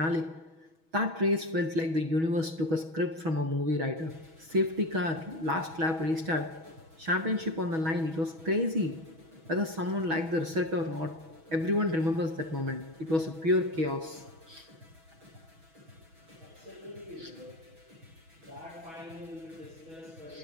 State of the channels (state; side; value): late; left; 6.2 ms